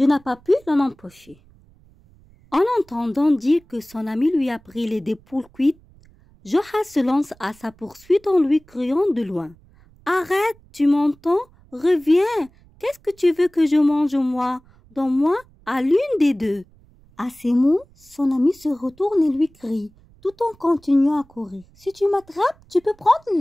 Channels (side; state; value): right; noise; rumble, 28 dB below the sound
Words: n'ai pas pu l'en empêcher. En entendant dire que son ami lui a pris les deux poules cuites, Joha se lance à sa poursuite en lui criant de loin. « Arrête, tu m'entends? Reviens! Qu'est-ce que tu veux que je mange moi? Donne-moi à l'une des deux. » À ces mots, son ami se retourne et lui crie, tout en continuant à courir. « Si tu m'attrapes, tu peux prendre